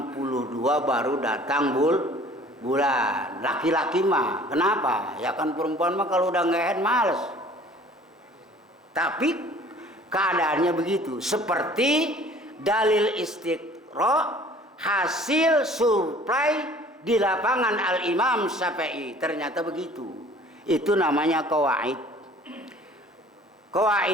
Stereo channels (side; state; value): both; normal; correlation 0.51